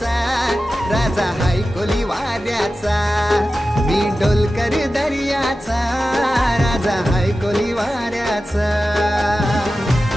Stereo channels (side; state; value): both; normal; correlation 0.94